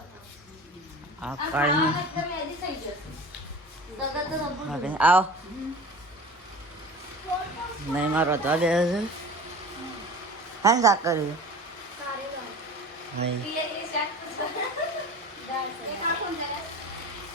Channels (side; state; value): both; normal; correlation 0.37